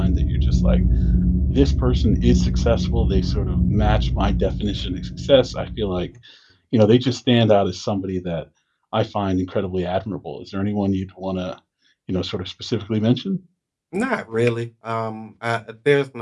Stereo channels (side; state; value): both; identical; correlation 1.00